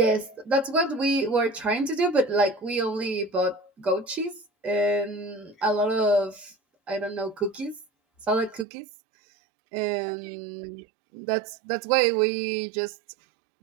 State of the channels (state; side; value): drops out; left; at 8.7 s